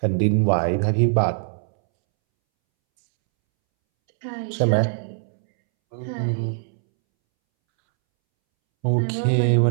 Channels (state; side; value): silent; left; 64 dB below the other